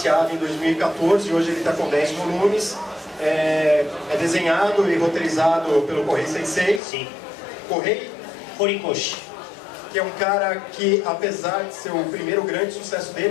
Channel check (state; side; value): drops out; right; at 6.8 s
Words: em 2014 e hoje ele está com 10 volumes. É desenhado e roteirizado pelo Kohei Sensei. Sim. Kohei Horikoshi. Que é um cara que, apesar de ser o primeiro grande sucesso